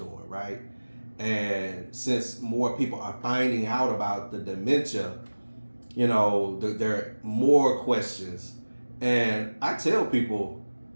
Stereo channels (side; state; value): both; inverted; correlation -1.00